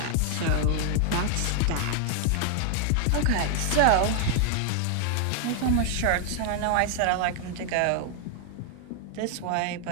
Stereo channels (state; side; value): different; both; correlation 0.00